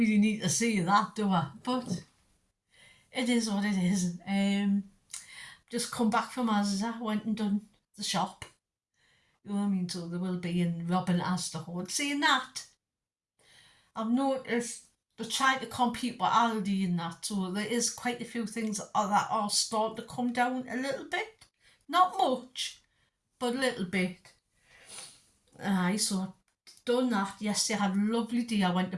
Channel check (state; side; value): identical; both; correlation 1.00